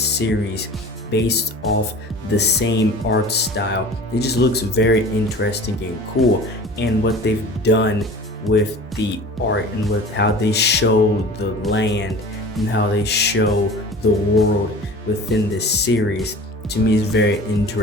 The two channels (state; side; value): normal; both; correlation 0.40